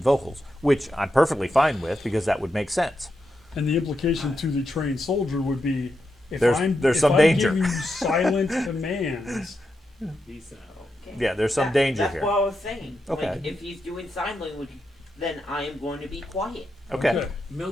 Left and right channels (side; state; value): both; normal; correlation 0.86